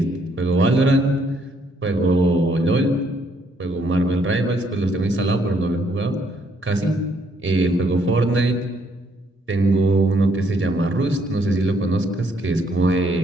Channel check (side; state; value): both; normal; correlation 0.70